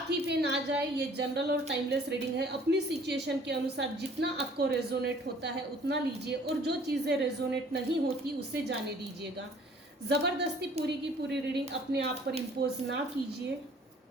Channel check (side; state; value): both; normal; correlation 0.55